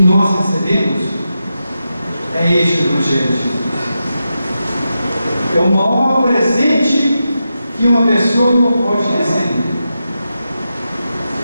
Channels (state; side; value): inverted; both; correlation -0.88